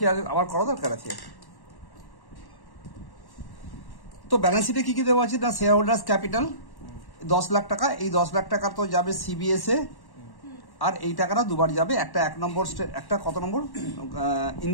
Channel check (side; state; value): right; late; 1.1 ms